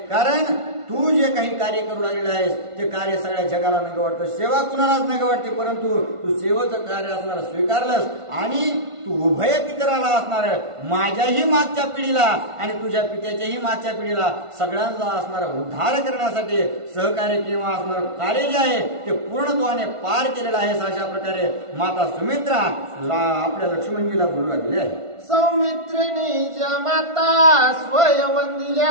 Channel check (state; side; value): late; left; 1.5 ms